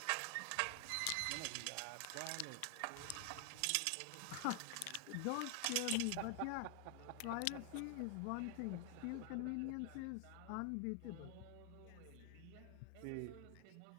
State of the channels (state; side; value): different; both; correlation 0.00